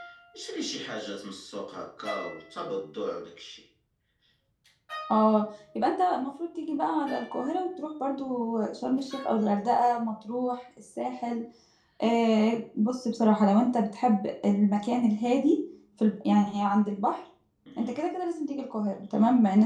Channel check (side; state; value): both; identical; correlation 1.00